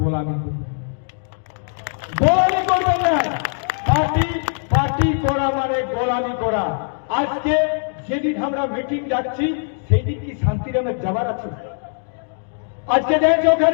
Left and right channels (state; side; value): silent; right; digital silence